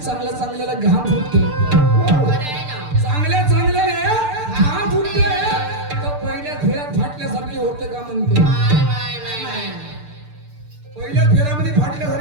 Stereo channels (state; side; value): late; left; 6.8 ms